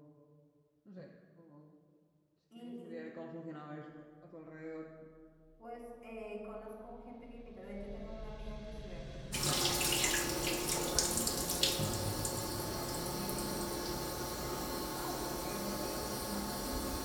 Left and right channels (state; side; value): identical; both; correlation 1.00